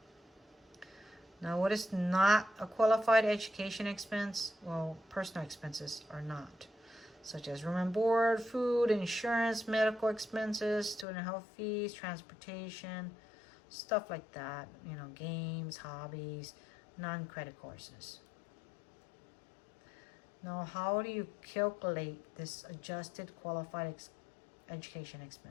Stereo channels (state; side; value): drops out; right; at 11.1 s